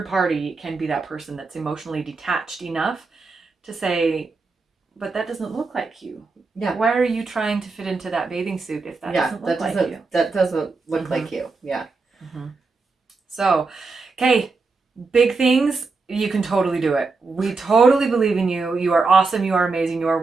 party can be that person that's emotionally detached enough to say, but that doesn't look like you. Yeah. Why are you trying to fit into that bathing suit if that doesn't look like you? That doesn't look like you. Yeah. So, okay, big things. You can totally do it. We totally believe in you. You are awesome. You are amazing. You are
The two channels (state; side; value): quieter; left; 4.1 dB